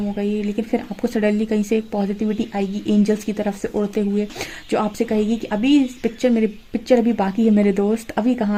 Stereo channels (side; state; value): both; identical; correlation 1.00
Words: हो गई, लेकिन फिर आपको सडनली कहीं से एक पॉजिटिविटी आएगी एंजल्स की तरफ से उड़ते हुए, जो आपसे कहेगी कि अभी पिक्चर अभी बाकी है मेरे दोस्त, अभी